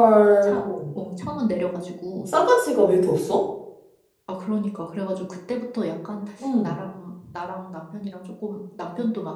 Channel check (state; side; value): identical; both; correlation 1.00